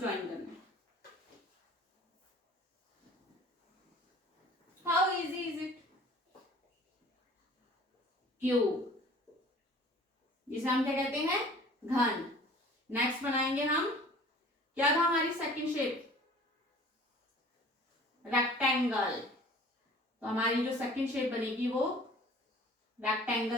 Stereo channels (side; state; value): both; normal; correlation 0.48